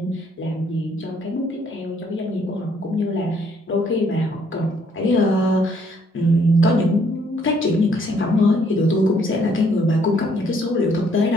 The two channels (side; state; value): both; normal; correlation 0.66